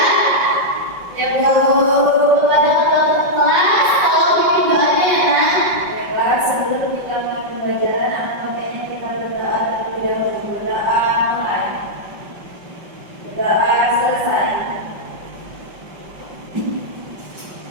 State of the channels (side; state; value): left; late; 5.5 ms